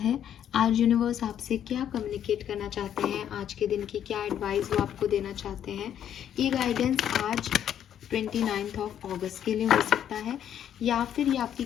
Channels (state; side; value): quieter; right; 9.9 dB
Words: आज यूनिवर्स आपसे क्या कम्युनिकेट करना चाहते हैं, आज के दिन की क्या एडवाइस वो आपको देना चाहते हैं। ये गाइडेंस आज 29th ऑफ अगस्त के लिए हो सकता है या फिर ये आपकी